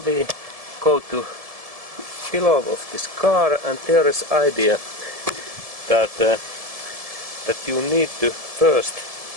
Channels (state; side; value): late; left; 1.7 ms